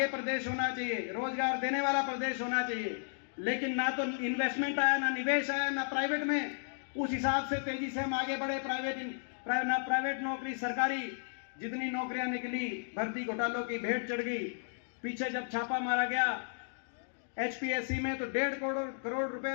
प्रदेश होना चाहिए, रोजगार देने वाला प्रदेश होना चाहिए, लेकिन ना तो इन्वेस्टमेंट आया, ना निवेश आया, ना प्राइवेट में उस हिसाब से तेजी से हम आगे बढ़े। प्राइवेट नौकरी, सरकारी जितनी नौकरियां निकली, भर्ती घोटालों की भेंट चढ़ गई। पीछे जब छापा मारा गया एचपीएससी में तो 1.5 करोड़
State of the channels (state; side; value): silent; right; digital silence